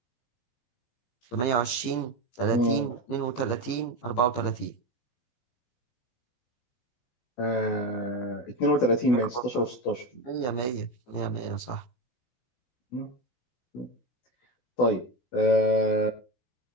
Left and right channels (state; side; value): late; right; 16 ms